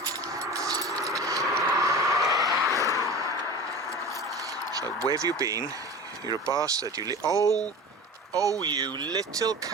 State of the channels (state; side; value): normal; both; correlation 0.33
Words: So, where have you been? You're a bastard. Oh, you little